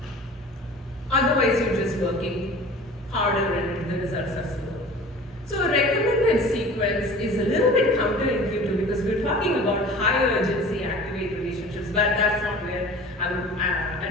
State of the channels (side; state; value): both; normal; correlation 0.42